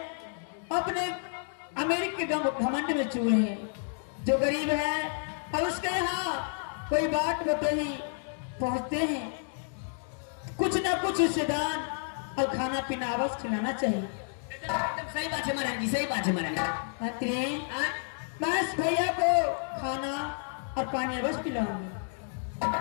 अपने अमीर के घमंड में चूर है, जो गरीब है और उसके यहाँ कोई बात बतही पहुंचते हैं, कुछ ना कुछ उससे दान और खाना पीना अवश्य खिलाना चाहिए। एकदम सही बात है महारानी जी, सही बात है महारानी। मंत्री, मैं इस भैया को खाना और पानी अवश्य पिलाऊंगी।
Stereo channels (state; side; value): silent; right; 58 dB below the other